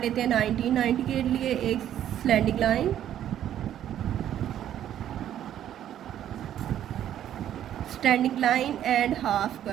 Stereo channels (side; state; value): left; quieter; 11.0 dB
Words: लेते हैं 90। 90 के लिए एक slanting line, standing line and half